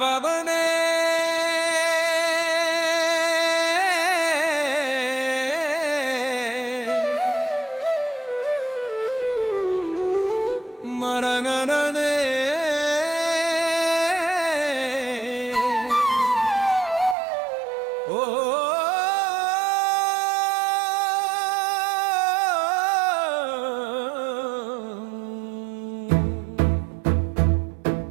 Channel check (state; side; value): drops out; left; at 17.2 s